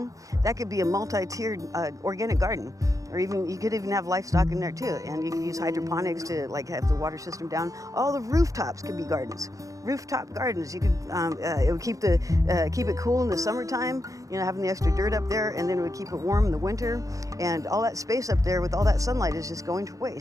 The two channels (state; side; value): late; left; 0.16 ms